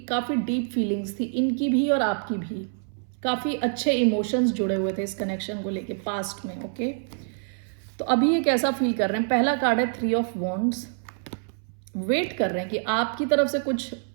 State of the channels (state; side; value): silent; left; 61 dB below the other